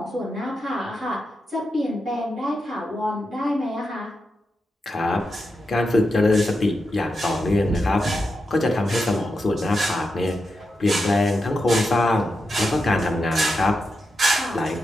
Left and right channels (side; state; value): both; normal; correlation 0.87